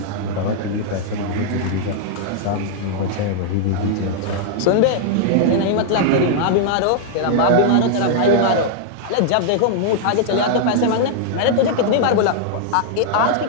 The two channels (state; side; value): different; both; correlation -0.01